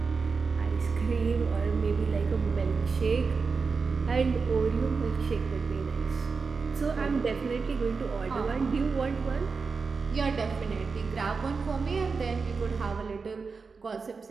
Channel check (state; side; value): quieter; left; 4.8 dB